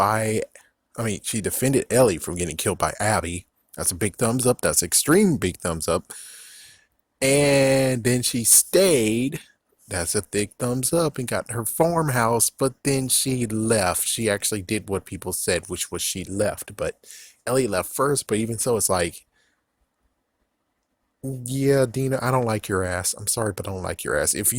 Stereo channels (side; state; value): both; identical; correlation 1.00